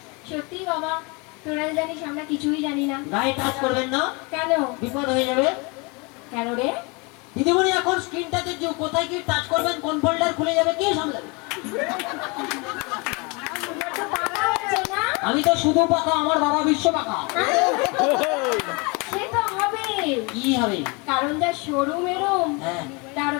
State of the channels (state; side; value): quieter; right; 29.4 dB